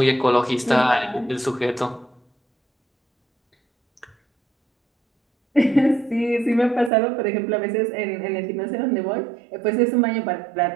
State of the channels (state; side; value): drops out; left; at 6.9 s